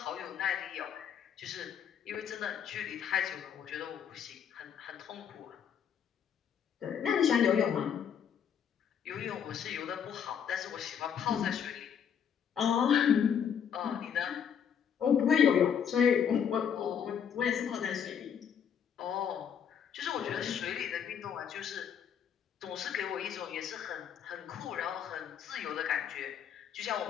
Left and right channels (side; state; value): right; quieter; 8.1 dB